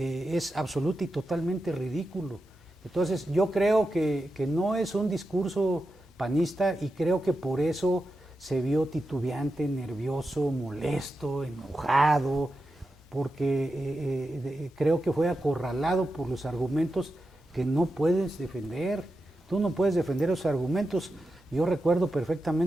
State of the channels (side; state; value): both; normal; correlation 0.90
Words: es absoluto y totalmente ridículo. Entonces yo creo que no es un discurso panista y creo que por eso se vio titubeante, nervioso, molesto, enojado, porque creo que fue acorralado por los argumentos que no puedes defender. Tú no puedes defender esos argumentos. Yo recuerdo